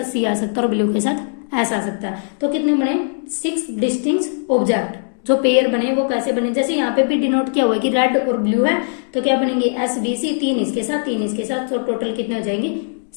सी आ सकता है और ब्लू के साथ एस आ सकता है। तो कितने बने, 6 डिस्टिंक्ट ऑब्जेक्ट जो पेयर बने वो कैसे बने, जैसे यहाँ पे भी डिनोट किया हुआ है कि रेड और ब्लू है, तो क्या बनेंगे एस बी सी, 3 इसके साथ 3 इसके साथ, तो टोटल कितने हो जाएंगे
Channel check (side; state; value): right; silent; digital silence